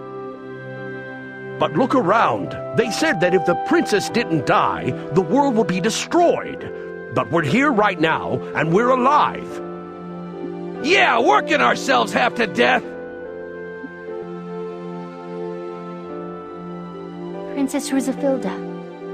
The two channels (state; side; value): identical; both; correlation 1.00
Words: But look around. They said that if the princess didn't die, the world would be destroyed. But we're here right now, and we're alive. Yeah, working ourselves half to death. Princess Rizafilda,